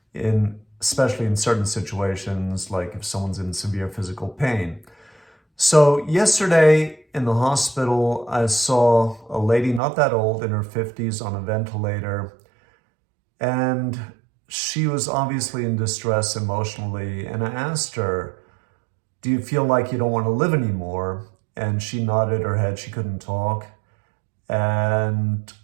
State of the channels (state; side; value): drops out; left; at 9.8 s